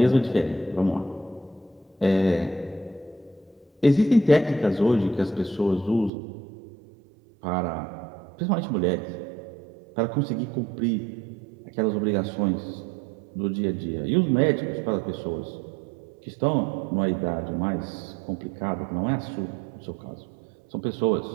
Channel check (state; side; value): drops out; left; at 6.1 s